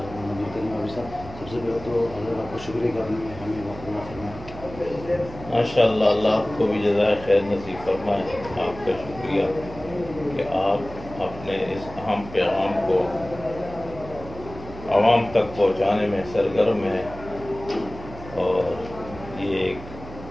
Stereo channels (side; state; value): right; noise; hum, 15 dB below the sound